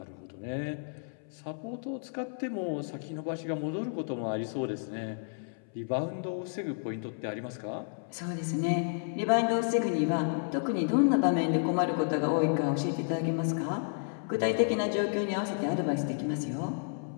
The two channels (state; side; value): silent; right; 57 dB below the other